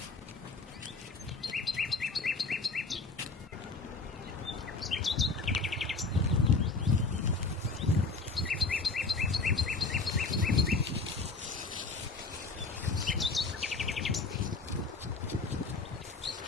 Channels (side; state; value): right; quieter; 3.9 dB